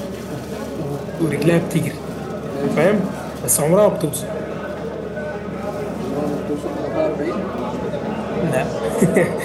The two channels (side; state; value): both; identical; correlation 1.00